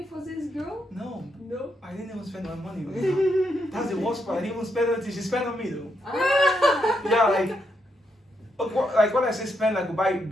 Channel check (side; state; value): both; normal; correlation 0.80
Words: for this girl? No, No. I didn't even spend my money. That's the worst part. I didn't even spend anything. She spent on me though. Ah. Yeah, like okay, like when I say spend, like we buy